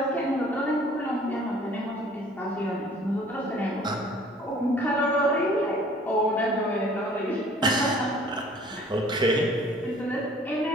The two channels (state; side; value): normal; both; correlation 0.53